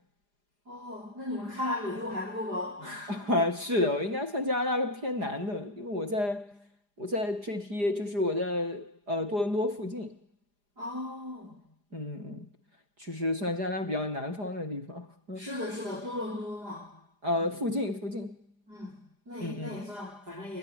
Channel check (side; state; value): left; late; 4.9 ms